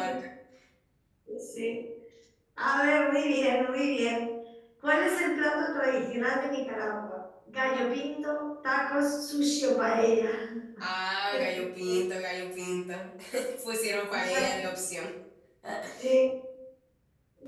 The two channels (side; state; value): both; identical; correlation 1.00